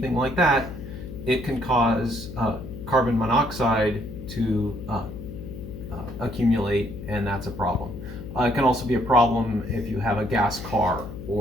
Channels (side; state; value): left; noise; hum, 11 dB below the sound